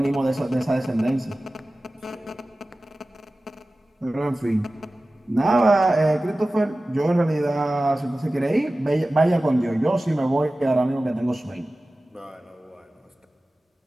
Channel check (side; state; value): both; normal; correlation 0.96